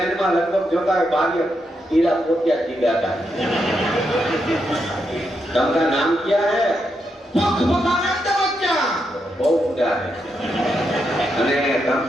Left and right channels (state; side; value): normal; both; correlation 0.82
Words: में लगभग जोता है बागी कीड़ा पोतिया चिल्लाता है. तुमका नाम क्या है? भगवानंद बच्चा. बहुत ऊंचा है. અને